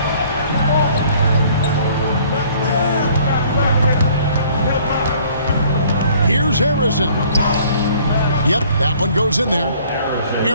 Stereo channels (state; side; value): inverted; both; correlation -0.57